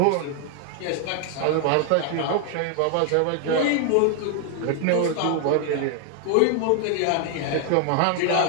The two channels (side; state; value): both; different; correlation 0.00